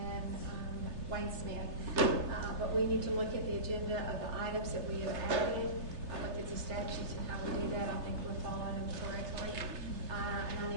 Wayne Smith. But we need to look at the agenda of the items that we have added. I looked at the statutes and how we do that. I think we're following them correctly. And I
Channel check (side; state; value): left; late; 3.3 ms